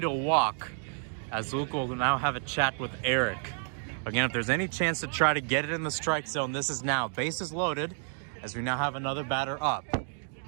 to walk as Luke will now have a chat with Eric. Again, if there's any chance to try to get it in the strike zone, this is now. Bases loaded as we now have another batter up.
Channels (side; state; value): left; silent; 58 dB below the other